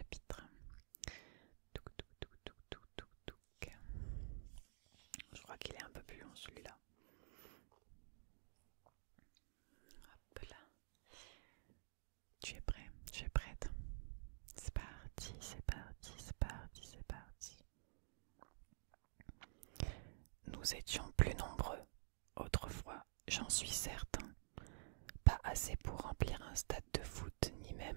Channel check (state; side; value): silent; left; digital silence